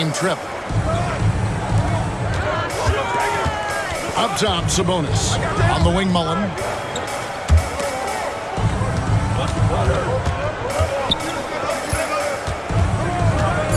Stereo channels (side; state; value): both; identical; correlation 1.00